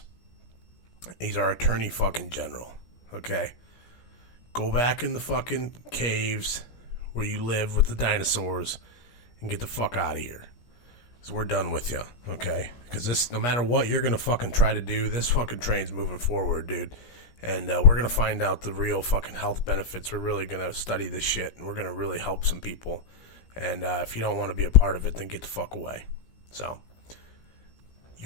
He's our attorney fucking general. Okay? Go back in the fucking caves where you live with the dinosaurs and get the fuck out of here. So we're done with you, okay? Because this, no matter what you're going to fucking try to do, this fucking train's moving forward, dude. And we're going to find out the real fucking health benefits. We're really going to study this shit, and we're going to really help some people. And if you don't want to be a part of it, then get the fuck away. So,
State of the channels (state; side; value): late; right; 17 ms